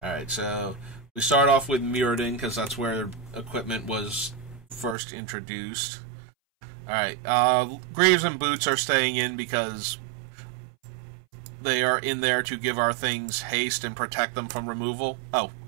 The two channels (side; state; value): left; drops out; at 5.0 s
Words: Alright, so we start off with Mirrodin, because that's where equipment was first introduced. Alright, Greaves and Boots are staying in because... they are in there to give our things haste and protect them from removal. Oh,